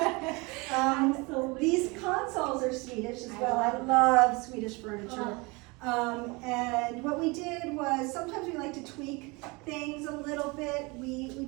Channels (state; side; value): quieter; left; 26.6 dB